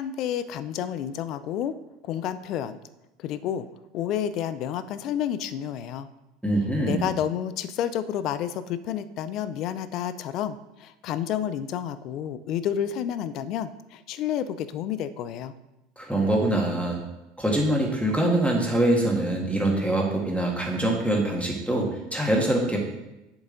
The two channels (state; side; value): normal; both; correlation 0.53